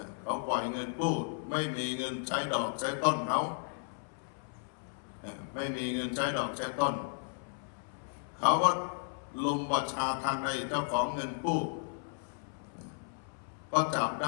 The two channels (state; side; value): silent; right; 55 dB below the other